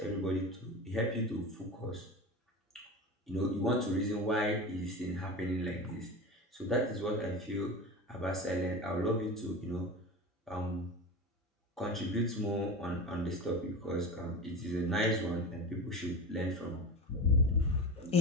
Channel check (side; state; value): both; normal; correlation 0.28